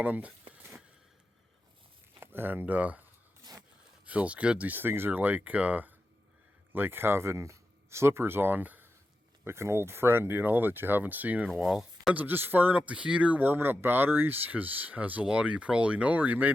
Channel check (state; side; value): normal; both; correlation 0.90